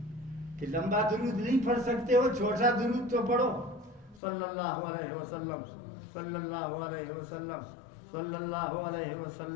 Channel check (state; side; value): drops out; right; at 4.2 s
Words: کہ لمبا درود نہیں پڑھ سکتے ہو, چھوٹا درود تو پڑھو. صلی اللہ علیہ وسلم, صلی اللہ علیہ وسلم, صلی اللہ علیہ